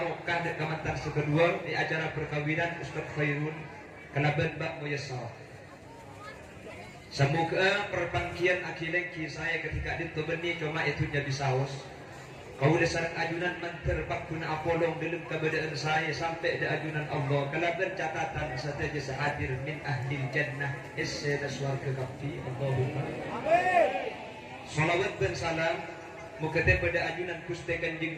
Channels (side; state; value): both; identical; correlation 1.00